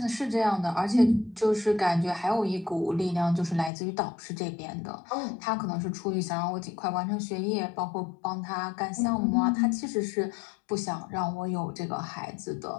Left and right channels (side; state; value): right; drops out; at 3.7 s